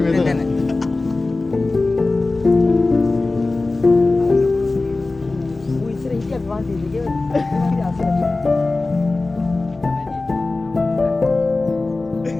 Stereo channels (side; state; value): right; quieter; 3.3 dB